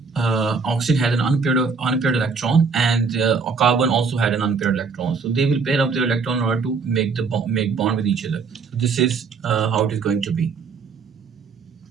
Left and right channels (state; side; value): quieter; left; 5.1 dB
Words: had an unpaired electron, and carbon also had an unpaired electron. So they will pair up their electron in order to make bond with each other. So this is how it is going to be.